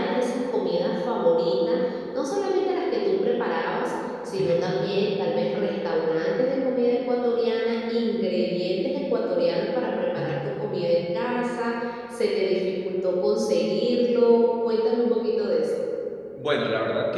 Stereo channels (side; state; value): both; identical; correlation 1.00